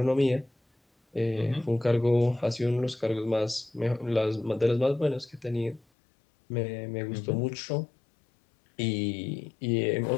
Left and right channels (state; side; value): drops out; right; at 5.9 s